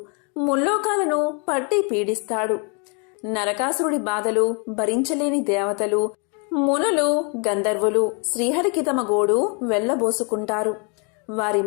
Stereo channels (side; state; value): right; quieter; 36.0 dB